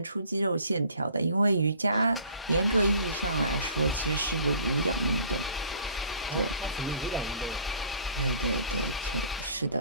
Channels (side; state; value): both; inverted; correlation -0.51